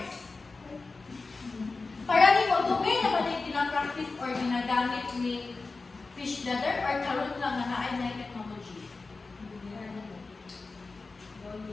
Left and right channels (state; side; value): quieter; right; 3.9 dB